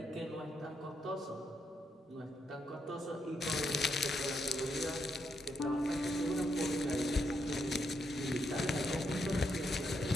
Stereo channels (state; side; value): normal; both; correlation 0.80